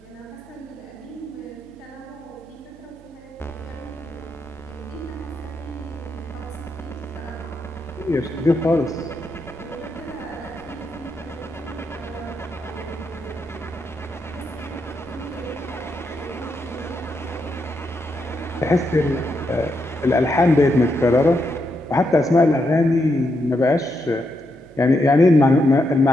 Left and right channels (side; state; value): right; noise; hum, 24 dB below the sound